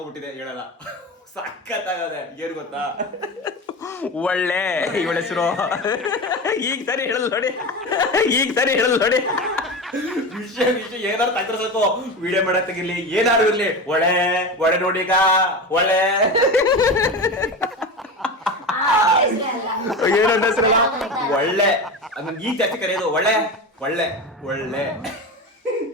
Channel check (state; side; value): normal; both; correlation 0.25